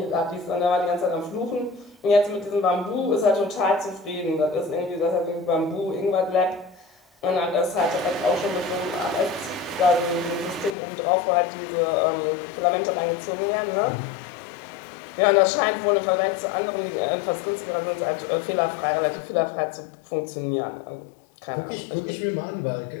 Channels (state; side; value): drops out; right; at 10.8 s